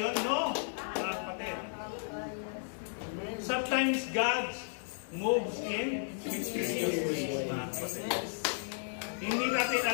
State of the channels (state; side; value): silent; right; digital silence